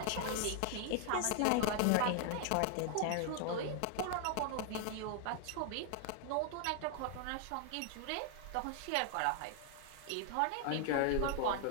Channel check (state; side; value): different; both; correlation 0.00